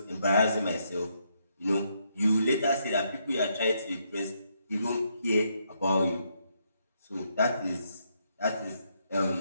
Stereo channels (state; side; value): inverted; both; correlation -0.76